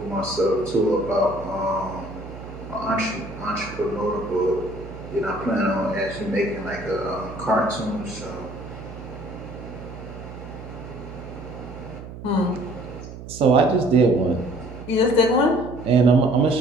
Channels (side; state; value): right; noise; hum, 13 dB below the sound